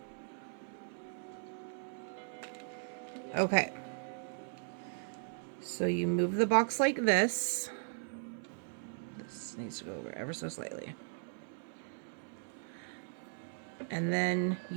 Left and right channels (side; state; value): left; silent; 53 dB below the other